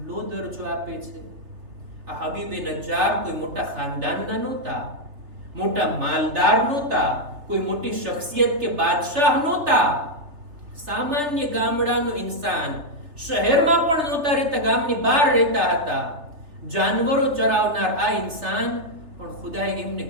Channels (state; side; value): late; left; 3.3 ms